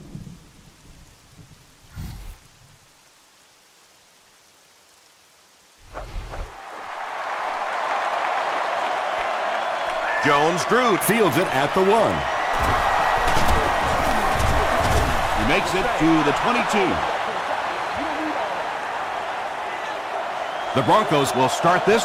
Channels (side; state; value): both; identical; correlation 1.00